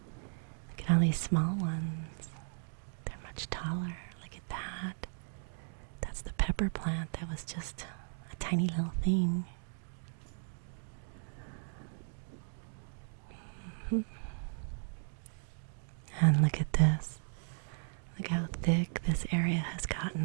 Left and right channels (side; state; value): left; silent; 54 dB below the other